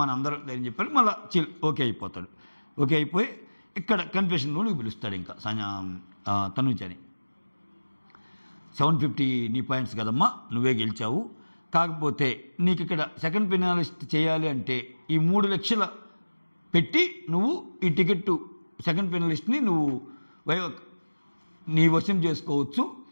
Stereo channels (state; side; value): inverted; both; correlation -1.00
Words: అందరూ ధైర్యం చెప్పారు. మళ్ళీ ఓకే అయిపోతాడు. ఓకే అయిపోయి ఇక్కడ కన్ఫెషన్ రూమ్కి పిలుస్తాడు ఇంకా తనూజని. 750 నీ పాయింట్స్ కదమ్మా, నువ్వే గెలిచావు. కాకపోతే నీకు ఇక్కడ సెకండ్ ఫినాలిస్ట్ చేయాలి అంటే ఈ 3 లక్షల పెట్టి నువ్వు ఈ టికెట్ సెకండ్ ఫినాలిస్ట్ని నువ్వు నీ వశం చేసుకోవచ్చు.